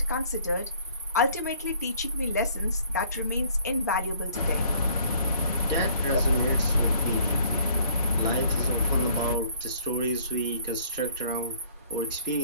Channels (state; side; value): inverted; both; correlation -0.58